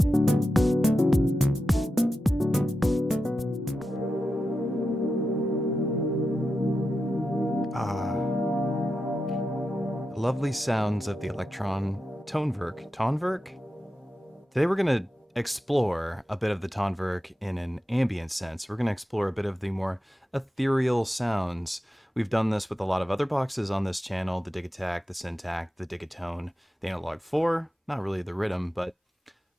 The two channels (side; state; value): both; normal; correlation 0.90